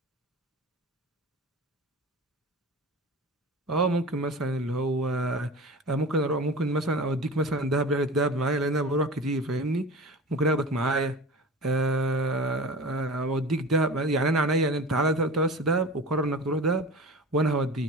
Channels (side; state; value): both; normal; correlation 0.34